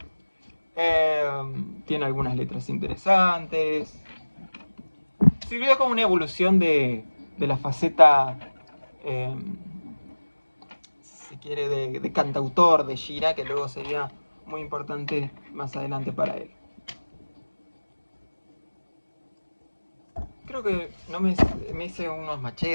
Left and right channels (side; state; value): both; inverted; correlation -1.00